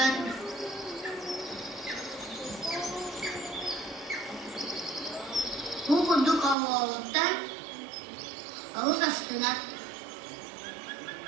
Bu kuduk avağıdan ağız astına.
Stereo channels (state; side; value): drops out; left; at 6.6 s